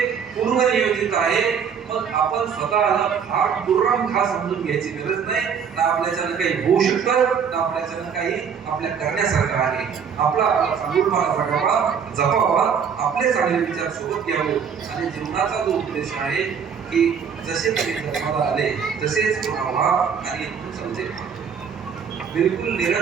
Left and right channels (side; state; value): left; quieter; 7.0 dB